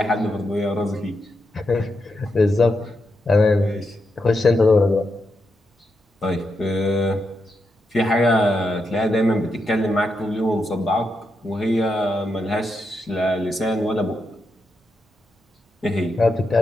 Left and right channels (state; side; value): normal; both; correlation 0.84